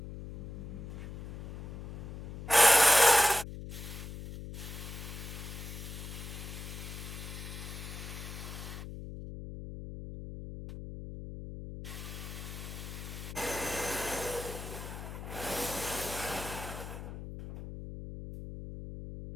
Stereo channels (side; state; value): left; noise; hum, 9 dB below the sound